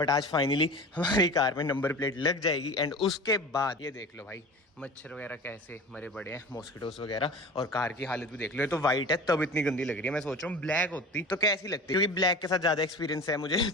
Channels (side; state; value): both; normal; correlation 0.36